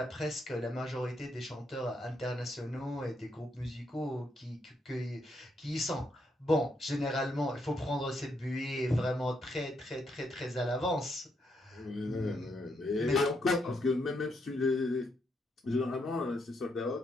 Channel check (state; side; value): normal; both; correlation 0.77